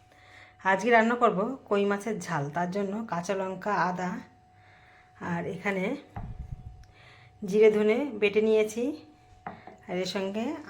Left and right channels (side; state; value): both; identical; correlation 1.00